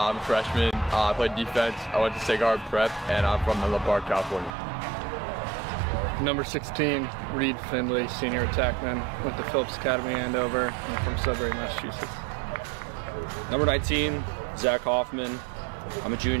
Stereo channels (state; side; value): drops out; left; at 4.5 s